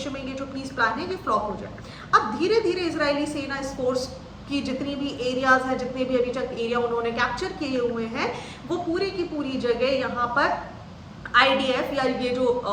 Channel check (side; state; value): both; identical; correlation 1.00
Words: में ये जो पीस प्लान है ये फ्लॉप हो जाए। अब धीरे धीरे इजरायली सेना इस फोर्स की जितनी भी एरियाज हैं, जितने भी अभी तक एरिया उन्होंने कैप्चर किए हुए हैं, वो पूरी की पूरी जगह यहाँ पर आईडीएफ या ये जो